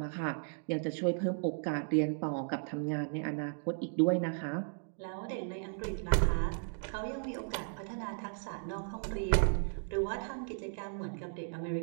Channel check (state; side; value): silent; left; 54 dB below the other